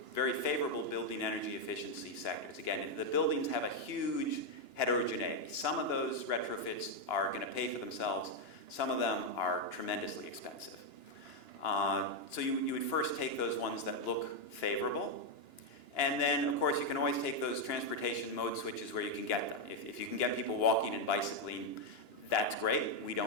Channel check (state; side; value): late; right; 2.9 ms